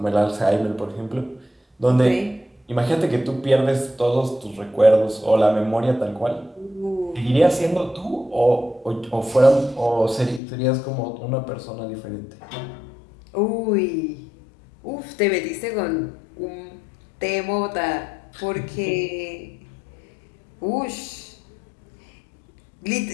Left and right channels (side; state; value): right; drops out; at 10.4 s